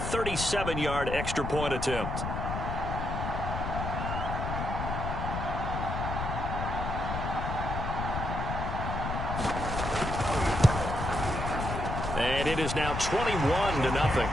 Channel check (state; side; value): noise; left; rumble, 4 dB below the sound